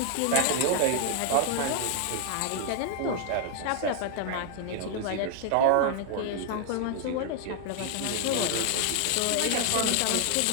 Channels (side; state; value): both; different; correlation 0.00